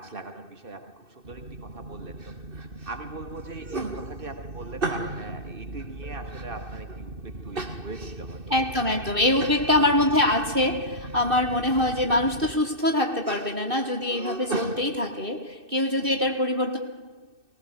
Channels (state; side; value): late; left; 2.6 ms